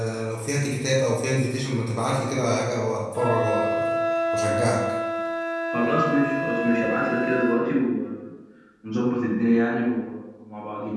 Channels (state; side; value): identical; both; correlation 1.00